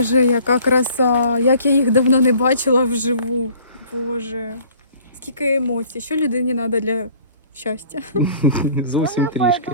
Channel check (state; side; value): inverted; both; correlation -0.52